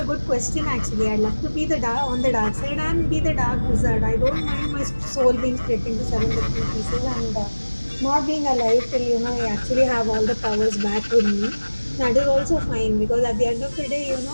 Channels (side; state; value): both; inverted; correlation -1.00